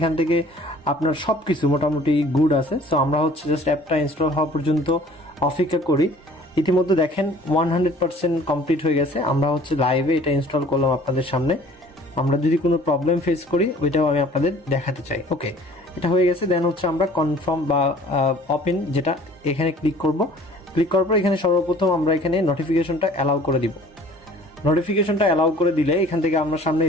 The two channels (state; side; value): normal; both; correlation 0.51